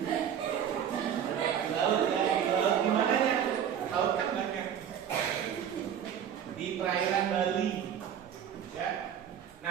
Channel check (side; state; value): left; quieter; 9.0 dB